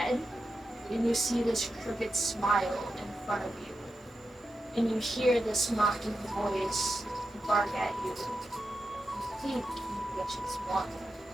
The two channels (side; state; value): both; normal; correlation 0.89